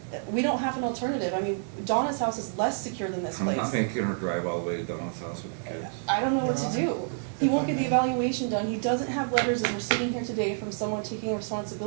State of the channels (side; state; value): left; silent; digital silence